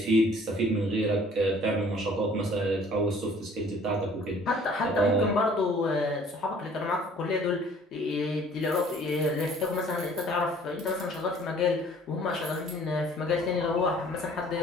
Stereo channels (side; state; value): both; normal; correlation 0.54